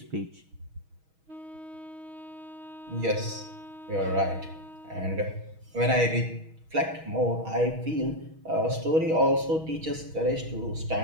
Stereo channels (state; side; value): late; left; 6.3 ms